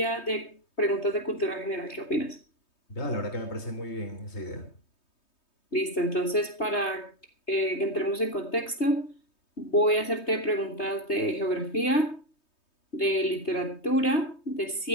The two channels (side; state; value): right; late; 3.2 ms